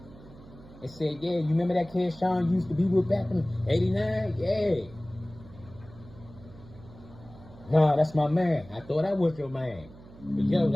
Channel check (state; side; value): noise; right; hum, 20 dB below the sound